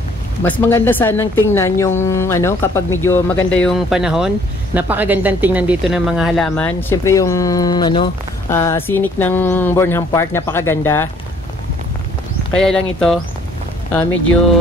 Mas maganda sanang tingnan yung kapag medyo maganda yung panahon. Napakagandang tingnan dito ng mga halaman. Siyempre yung scenic ng Burnham Park, napakaganda. Kaya lang ito medyo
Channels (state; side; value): normal; both; correlation 0.60